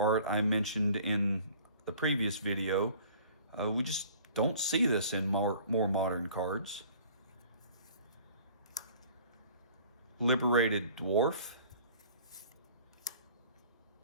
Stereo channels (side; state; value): both; inverted; correlation -0.51